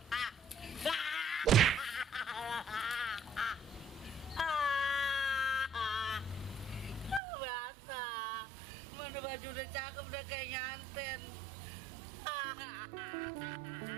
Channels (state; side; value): drops out; left; at 7.2 s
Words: Basah. Mana baju udah cakep, udah kayak nyanten.